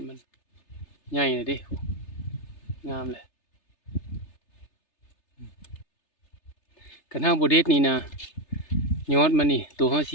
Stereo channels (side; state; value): right; late; 3.3 ms